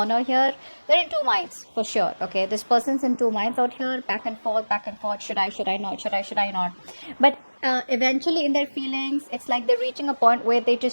here. They're in two minds for sure. Okay, this person's in two minds out here, back and forth, back and forth. Should I not? Should I not? But eventually in their feelings, it's like they're reaching a point where they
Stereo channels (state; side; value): inverted; both; correlation -1.00